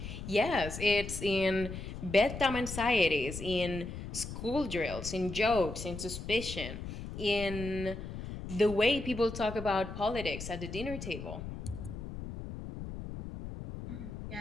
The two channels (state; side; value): noise; left; rumble, 8 dB below the sound